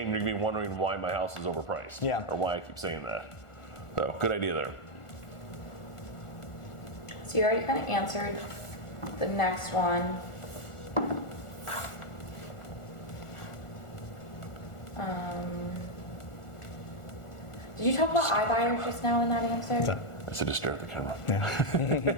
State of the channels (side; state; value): right; late; 1.4 ms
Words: You're going to be wondering why my house is overpriced. Yeah. Or why I keep saying that. So good idea there. So you already kind of answered the next one. Did you talk about iBuyers just now in that answer? I said just stare at the camera.